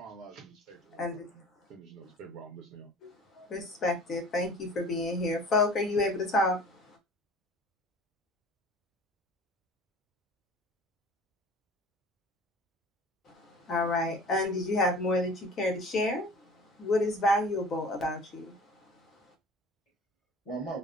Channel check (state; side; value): normal; both; correlation 0.44